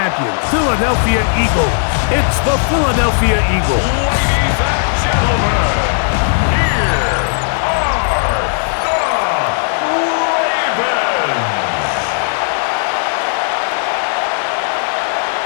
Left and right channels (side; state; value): right; silent; digital silence